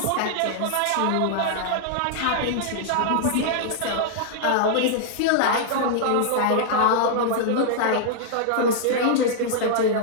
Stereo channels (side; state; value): both; different; correlation -0.01